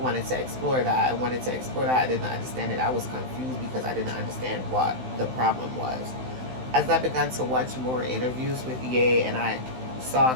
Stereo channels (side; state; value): left; late; 16 ms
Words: to explore that. I wanted to explore that. I didn't understand it. I was confused because I didn't understand what the problem was. As I began to watch more interviews with Ye, and I saw a